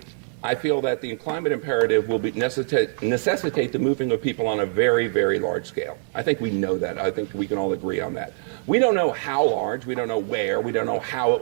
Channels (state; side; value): silent; left; 62 dB below the other